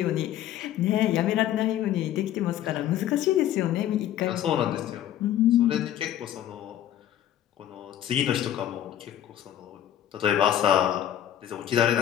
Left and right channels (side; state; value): right; quieter; 11.6 dB